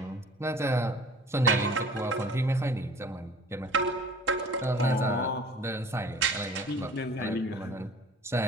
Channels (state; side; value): normal; both; correlation 0.47